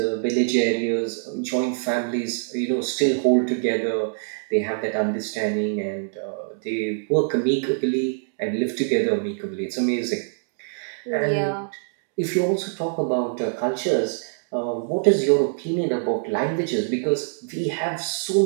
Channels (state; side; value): silent; left; digital silence